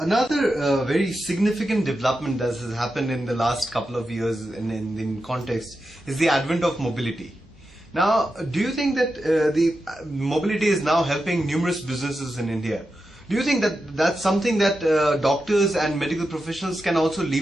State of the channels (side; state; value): both; normal; correlation 0.89